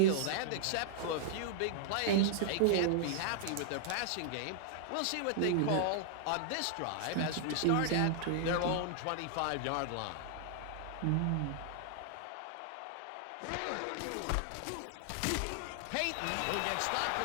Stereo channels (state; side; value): different; both; correlation -0.01